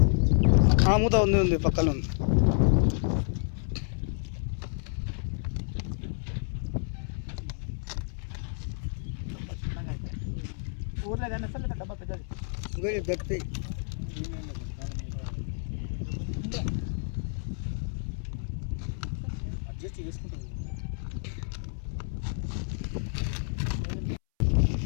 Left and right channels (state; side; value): silent; right; 58 dB below the other